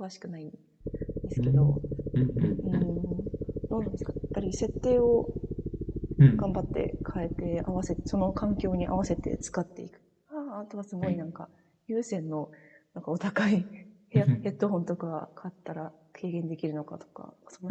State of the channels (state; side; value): identical; both; correlation 1.00